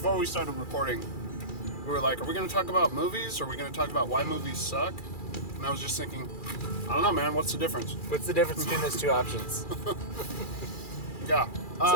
we started recording, we were like, are we going to talk about movies or are we going to talk about why movies suck? And I was just thinking, I don't know, man. What's the difference? What's the difference between those two options? Yeah.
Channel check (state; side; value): late; right; 2.4 ms